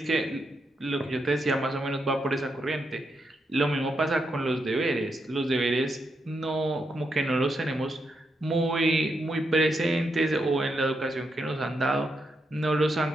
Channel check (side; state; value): both; normal; correlation 0.82